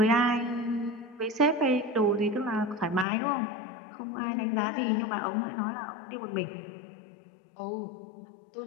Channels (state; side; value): drops out; right; at 3.1 s